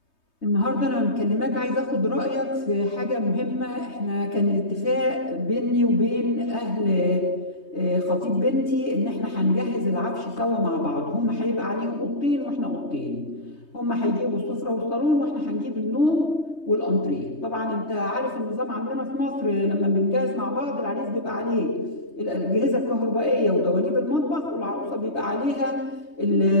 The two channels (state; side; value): late; right; 3.2 ms